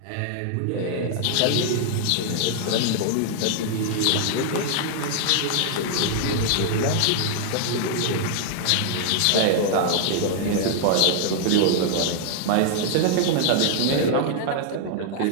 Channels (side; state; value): both; different; correlation 0.00